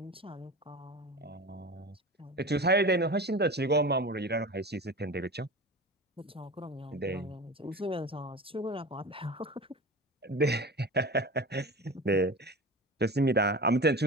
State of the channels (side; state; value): both; normal; correlation 0.32